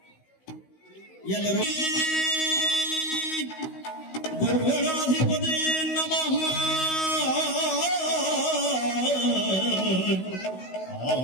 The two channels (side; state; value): right; late; 16 ms